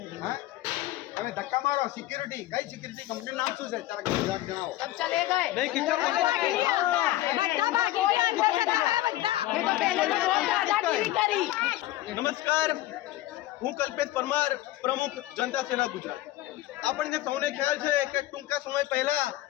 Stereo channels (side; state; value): right; quieter; 15.9 dB